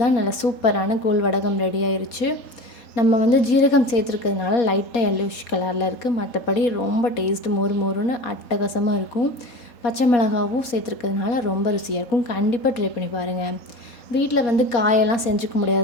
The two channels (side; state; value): right; late; 4.2 ms